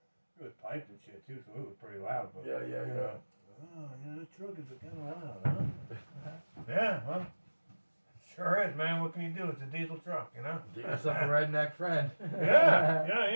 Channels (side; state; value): both; inverted; correlation -1.00